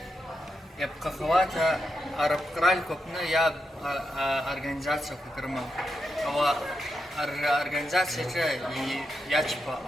يبقى خواته عرب قرال كوبنا يا организация كرما أو организация يجبا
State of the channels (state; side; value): normal; both; correlation 0.85